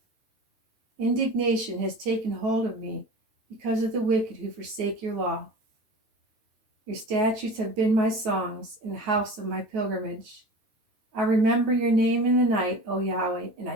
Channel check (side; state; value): left; late; 8.9 ms